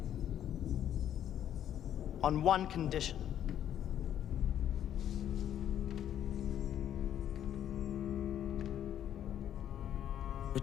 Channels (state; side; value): quieter; right; 10.5 dB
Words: on one condition.